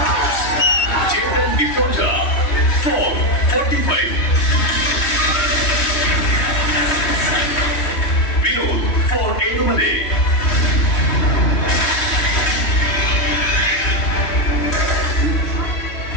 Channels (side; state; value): right; late; 3.1 ms